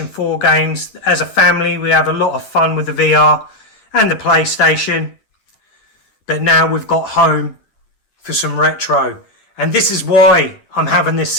4 games. As a family, we have a lot of fun with the VR and the PlayStation. But now we've got home for some retro. And this is why I'm having this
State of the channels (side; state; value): right; late; 10 ms